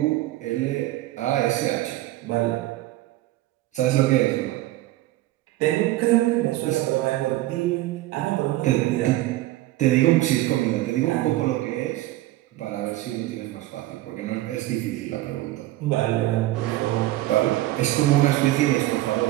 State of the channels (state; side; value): quieter; left; 16.4 dB